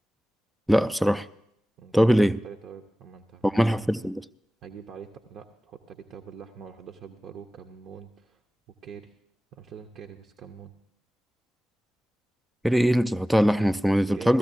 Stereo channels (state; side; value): normal; both; correlation 0.98